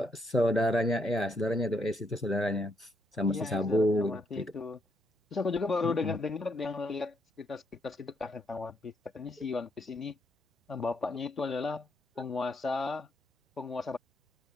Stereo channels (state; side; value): normal; both; correlation 0.75